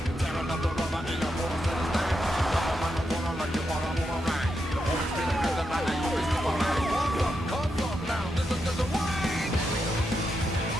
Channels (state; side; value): normal; both; correlation 0.84